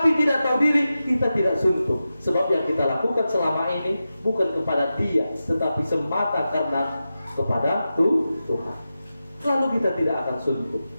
tidak tahu diri, kita tidak suntuk. Sebab yang kita lakukan selama ini bukan kepada dia, tetapi semata karena kepada Tuhan. Lalu kita tidak akan suntuk.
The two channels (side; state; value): both; inverted; correlation -0.92